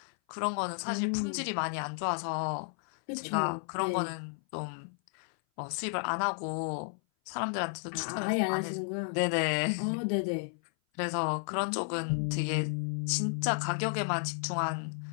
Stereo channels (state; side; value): silent; right; 56 dB below the other